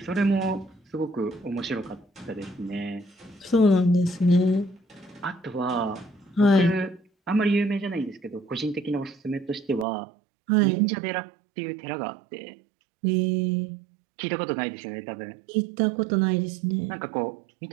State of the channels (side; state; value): left; drops out; at 9.9 s